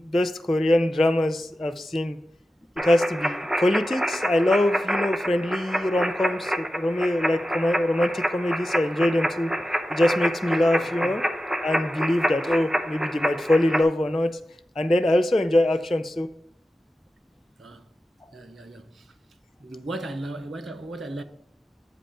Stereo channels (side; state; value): both; normal; correlation 0.92